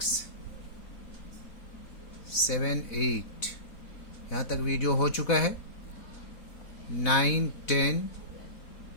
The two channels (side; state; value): right; late; 4.1 ms